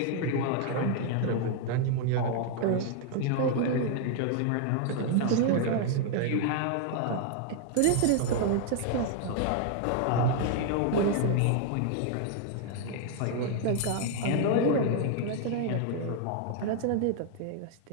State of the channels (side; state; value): both; different; correlation 0.00